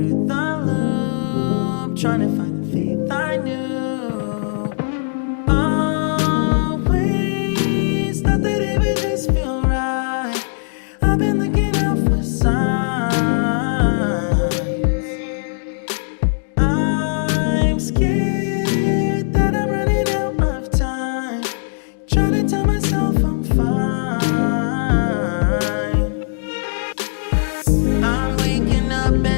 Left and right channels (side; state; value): right; silent; digital silence